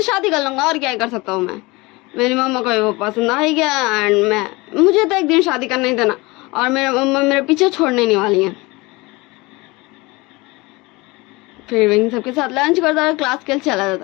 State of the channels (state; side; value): quieter; right; 23.6 dB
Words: शादी कर लूंगा, और क्या कर सकता हूँ मैं, मेरी मम्मा को वो पसंद आ ही गया एंड मुझे तो एक दिन शादी करना ही देना, और मेरे मम्मा मेरे पीछे छोड़ने नहीं वाली है। फिर विंग सबके साथ लंच करता है, क्लास के लिए चला